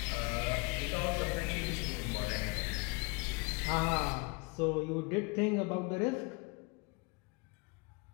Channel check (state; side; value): quieter; right; 29.5 dB